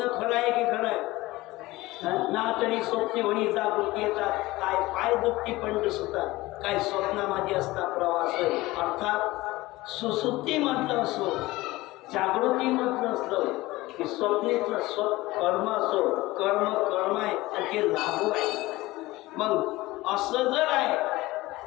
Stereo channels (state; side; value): quieter; right; 19.4 dB